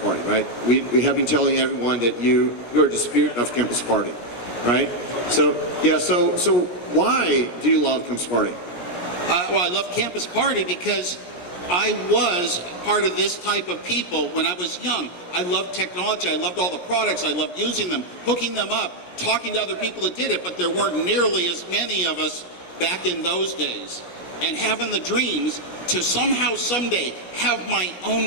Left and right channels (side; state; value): right; late; 17 ms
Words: right? We have been telling everyone that you're the spirit of Campus Party, right? So, yeah, so why do you love Campus Party? Well, I love Campus Party because I was part of this type of people when I was young. I loved technology, I loved all the products, I loved using them, hooking them up, talking to other people that did it, but there weren't nearly as many of us back in those days. And having the dreams to somehow, someday, have my